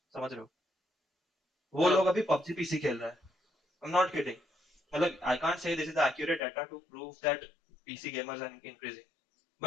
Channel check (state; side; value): drops out; right; at 6.4 s